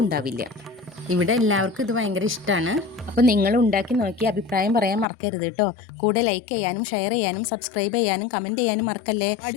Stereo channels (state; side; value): drops out; right; at 5.1 s